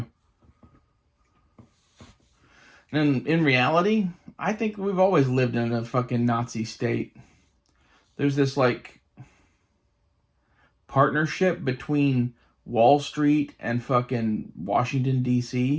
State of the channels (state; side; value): identical; both; correlation 1.00